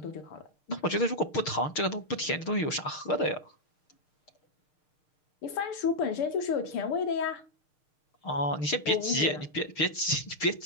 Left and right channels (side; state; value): right; late; 6.5 ms